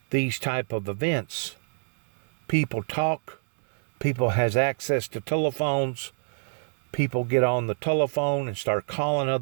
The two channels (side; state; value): left; silent; digital silence